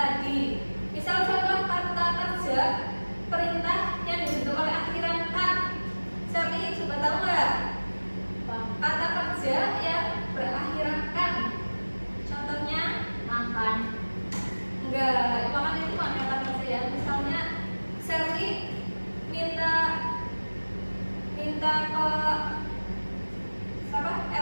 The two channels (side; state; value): both; inverted; correlation -1.00